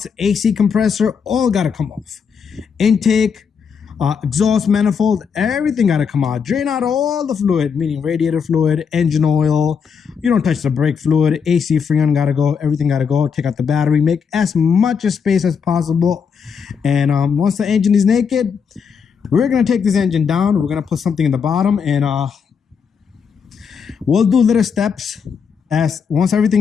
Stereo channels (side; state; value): right; quieter; 6.4 dB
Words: AC compressor, all gotta come off. Intake, exhaust manifold, everything gotta come out. Drain out all the fluid, meaning radiator fluid, engine oil. You don't touch the brake fluid. AC freon gotta go. Everything gotta go. Take out the battery. Make as much space as possible. And once the engine is naked, we're gonna take this engine down. We're gonna put something in the bottom, and we'll do little steps. As once everything